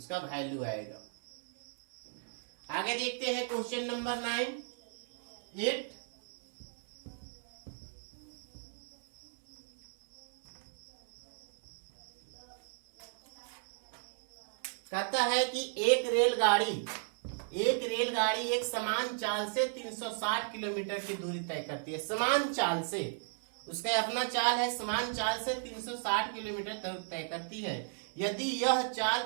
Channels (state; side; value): silent; left; 54 dB below the other